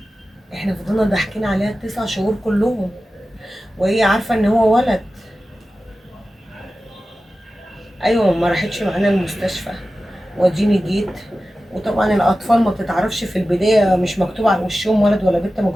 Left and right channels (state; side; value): normal; both; correlation 0.94